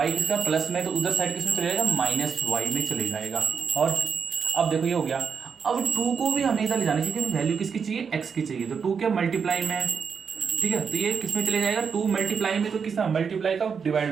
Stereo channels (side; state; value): left; quieter; 6.2 dB